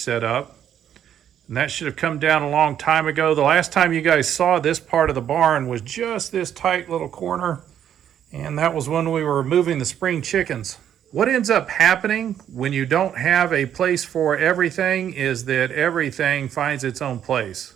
up. And that should have come down a long time ago. The last time you guys saw this part of the barn was just this tight little corner. And that was when we were moving the spring chickens. What ends up happening when you don't have a place for everything is that everything finds its own place.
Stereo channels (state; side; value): quieter; left; 9.8 dB